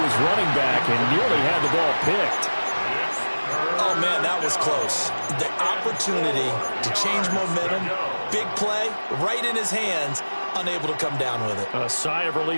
his running back and nearly had the ball picked. Oh, man, that was close. The opportunity to change momentum, big play, right in his hands, unable to come down with it. A sigh of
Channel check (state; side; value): inverted; both; correlation -1.00